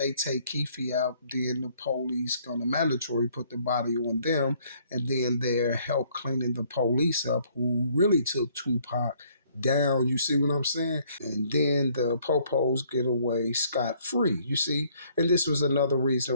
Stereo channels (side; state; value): both; inverted; correlation -0.63